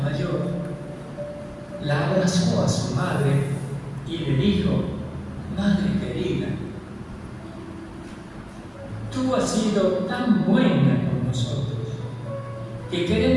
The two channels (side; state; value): both; identical; correlation 1.00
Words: la abrazó a su madre y le dijo: madre querida, tú has sido tan buena con nosotros que